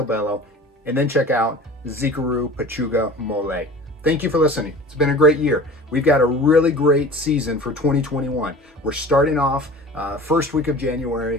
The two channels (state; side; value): normal; both; correlation 0.40